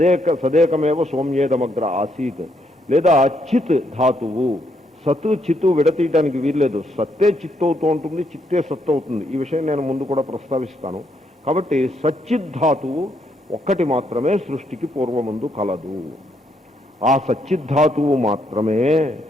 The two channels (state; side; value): normal; both; correlation 0.75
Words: సదేకమేవ సౌమ్యేదమగ్ర ఆసీత్, లేదా చిత్ ధాతువు. సత్తు చిత్తు విడతీయడానికి వీల్లేదు, సత్తే చిత్తు అవుతూ ఉంటుంది, చిత్తే సత్తు అవుతుంది. ఈ విషయం నేను ముందు కూడా ప్రస్తావిస్తాను. కాబట్టి సచ్చిద్ధాతువు ఒక్కటి మాత్రమే సృష్టికి పూర్వముందు కలదు. ఆ సచ్చిద్ధాతువు మాత్రమే